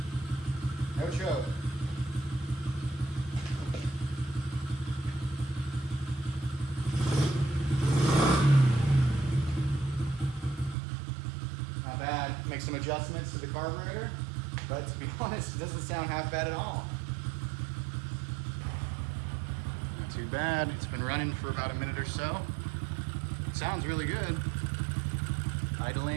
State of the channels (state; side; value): drops out; left; at 10.8 s